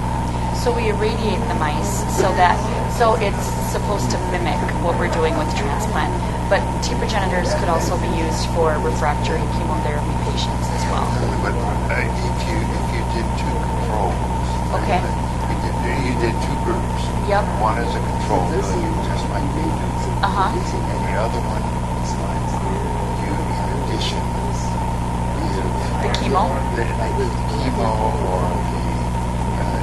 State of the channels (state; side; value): identical; both; correlation 1.00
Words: So we irradiate the mice so it's supposed to mimic what we're doing with transplant. But T progenitors could also be used for refractory chemotherapy patients as well. But if you did two controls, Okay. you did two groups. Yep. One is a control, just like we do, Uh-huh. and the other one, you in addition The chemo? the chemo or